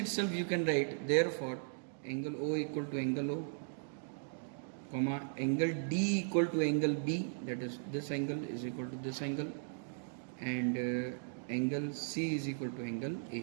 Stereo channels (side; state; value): left; silent; digital silence